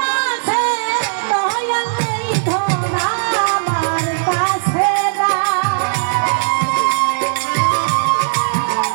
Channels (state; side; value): silent; left; digital silence